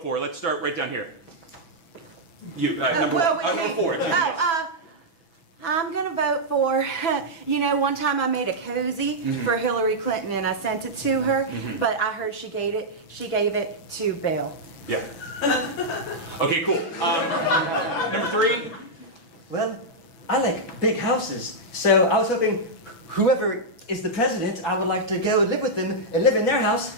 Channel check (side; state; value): right; late; 6.1 ms